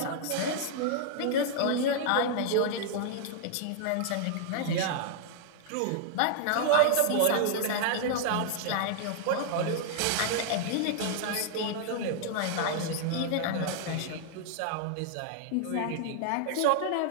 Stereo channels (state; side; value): different; both; correlation -0.01